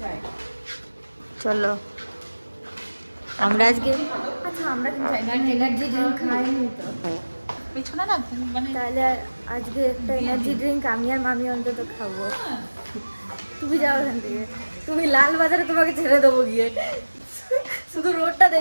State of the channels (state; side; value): inverted; both; correlation -1.00